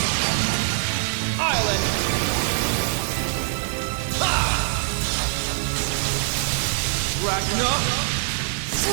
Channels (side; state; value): left; silent; digital silence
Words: Island. Ha! Ragna.